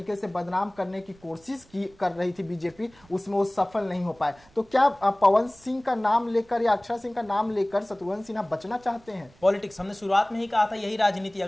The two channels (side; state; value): right; noise; rumble, 28 dB below the sound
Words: से बदनाम करने की कोशिश कर रही थी बीजेपी, उसमें वो सफल नहीं हो पाए। तो क्या पवन सिंह का नाम लेकर या अक्षरा सिंह का नाम लेकर शत्रुघ्न सिन्हा बचना चाहते हैं? पॉलिटिक्स, हमने शुरुआत में ही कहा था यही राजनीति।